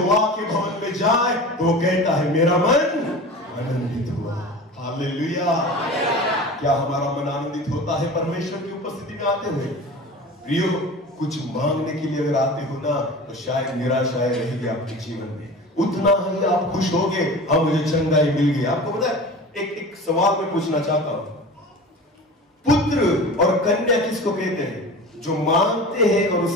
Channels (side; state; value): both; normal; correlation 0.35